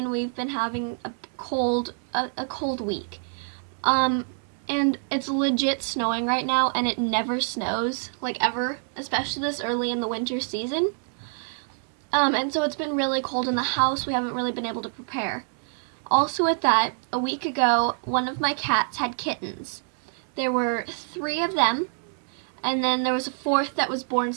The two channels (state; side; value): silent; left; 61 dB below the other